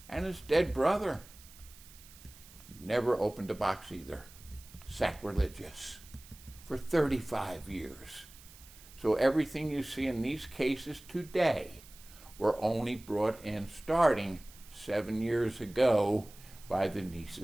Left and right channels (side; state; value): right; noise; hiss, 21 dB below the sound